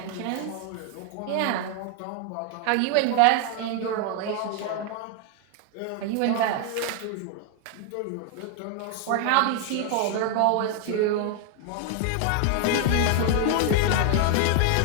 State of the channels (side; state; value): both; different; correlation 0.00